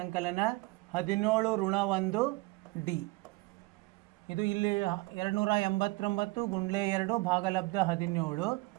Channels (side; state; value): left; quieter; 23.3 dB